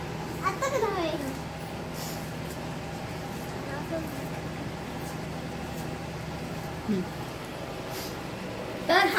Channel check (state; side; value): identical; both; correlation 1.00